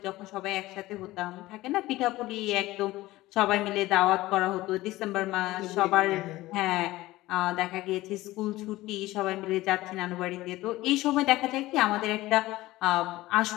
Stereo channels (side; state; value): right; quieter; 17.7 dB